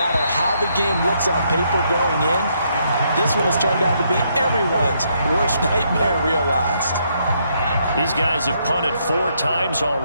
how the game looks on paper going in. This one has turned out to be everyone's worst nightmare realized. These guys have punted 4 times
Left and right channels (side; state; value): both; inverted; correlation -0.74